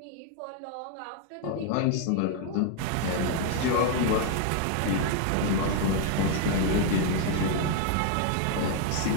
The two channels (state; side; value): different; both; correlation 0.00